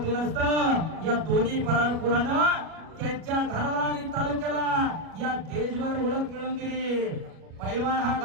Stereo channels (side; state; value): left; late; 37 ms